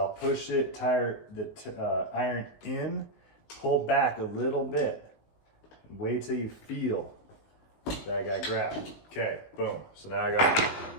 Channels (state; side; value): late; right; 19 ms